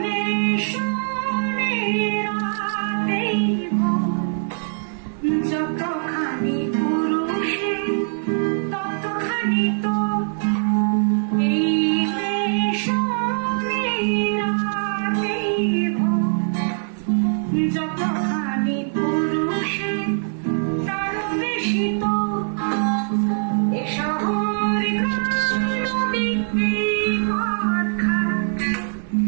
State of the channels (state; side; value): silent; left; 64 dB below the other